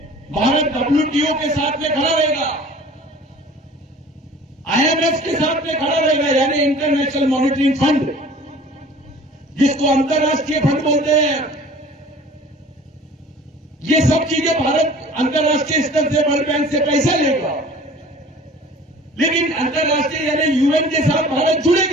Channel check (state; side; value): normal; both; correlation 0.46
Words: भारत WTO के साथ में खड़ा रहेगा, IMF के साथ में खड़ा रहेगा, यानी इंटरनेशनल मॉनिटरिंग फंड, जिसको अंतर्राष्ट्रीय फंड बोलते हैं। ये सब चीजें भारत अंतर्राष्ट्रीय स्तर से वर्ल्ड बैंक से पैसा लेगा, लेकिन अंतर्राष्ट्रीय यानी UN के साथ भारत